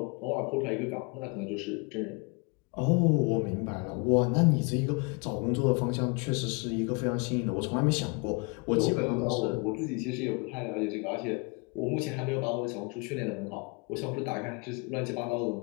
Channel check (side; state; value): right; quieter; 31.6 dB